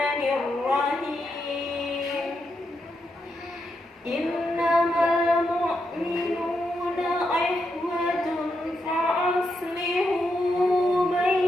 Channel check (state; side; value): normal; both; correlation 0.83